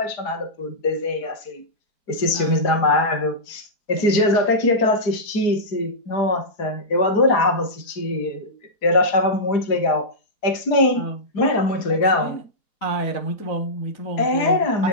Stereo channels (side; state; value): right; late; 4.9 ms